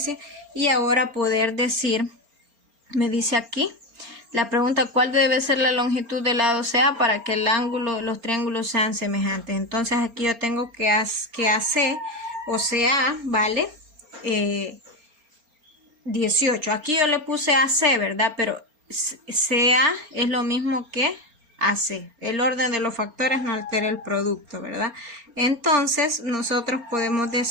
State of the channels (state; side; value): late; left; 4.3 ms